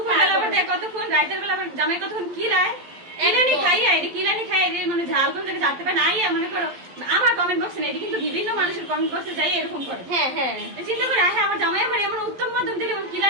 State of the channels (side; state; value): left; late; 11 ms